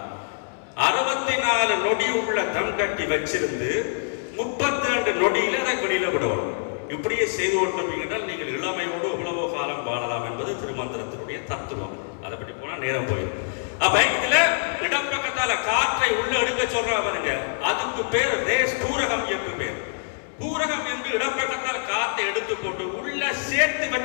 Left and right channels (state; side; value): silent; right; 62 dB below the other